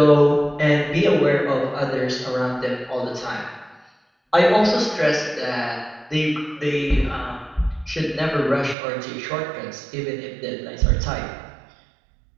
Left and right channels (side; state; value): left; drops out; at 8.8 s